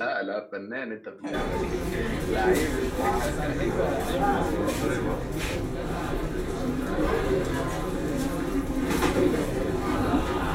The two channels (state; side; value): identical; both; correlation 1.00